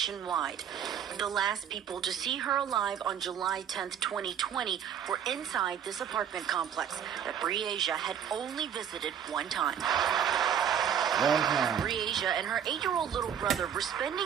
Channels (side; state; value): left; quieter; 8.7 dB